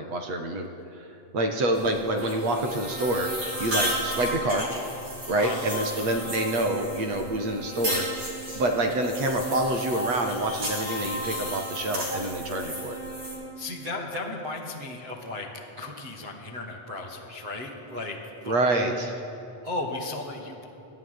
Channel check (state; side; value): late; left; 8.1 ms